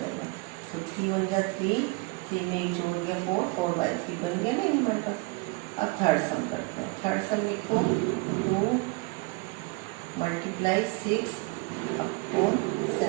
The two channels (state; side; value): quieter; left; 25.8 dB